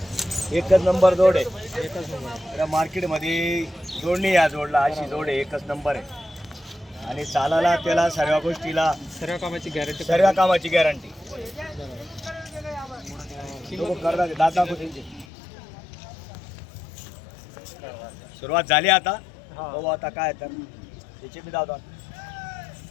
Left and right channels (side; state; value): right; drops out; at 15.2 s